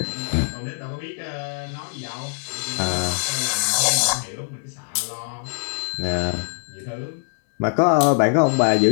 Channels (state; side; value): silent; right; digital silence